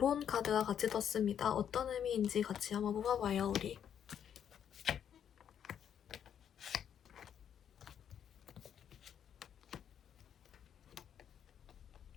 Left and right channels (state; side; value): quieter; right; 8.9 dB